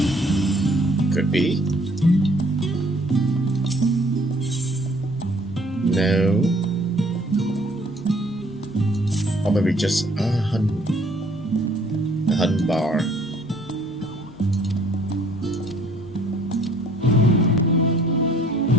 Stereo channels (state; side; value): noise; right; hum, 30 dB below the sound